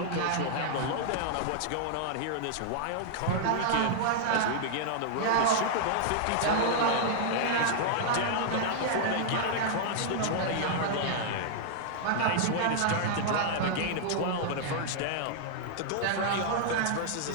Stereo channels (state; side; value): different; both; correlation -0.01